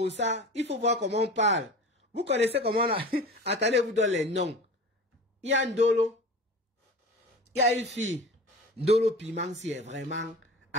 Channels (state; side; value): normal; both; correlation 0.35